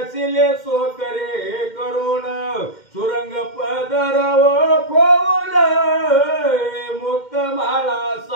सो करे करुण सुरंग पदर खोल मुक्त माळा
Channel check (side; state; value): right; late; 2.1 ms